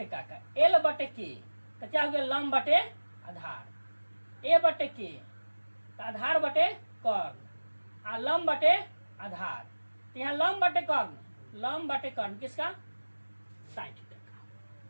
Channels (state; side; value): inverted; both; correlation -1.00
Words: का, एल बटे के, तो क्या हो गया, लंब बटे आधार, ए बटे के तो आधार बटे कर्ण, आ लंब बटे आधार। तो यहाँ लंब बटे कर्ण, लंब बटे कर्ण किसका, साइन थीटा का।